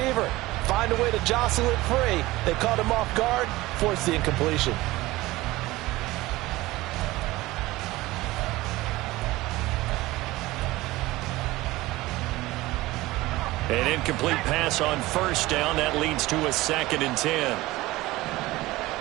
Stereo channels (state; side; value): quieter; left; 18.9 dB